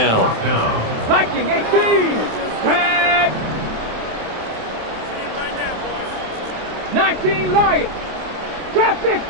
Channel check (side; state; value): left; late; 27 ms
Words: Viking 18. Tag. 19 Lions. Trap